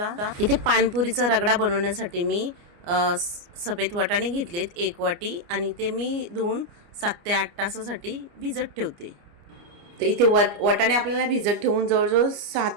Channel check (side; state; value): left; late; 29 ms